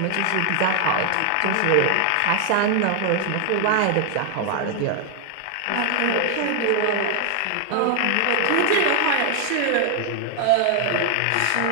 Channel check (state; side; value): different; both; correlation 0.00